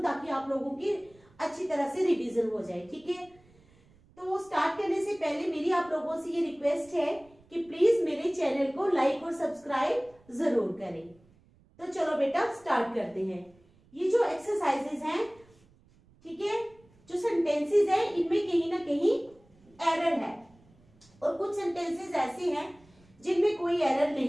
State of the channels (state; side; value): noise; right; rumble, 29 dB below the sound